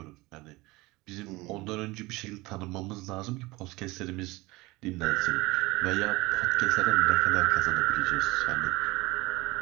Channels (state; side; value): quieter; left; 21.7 dB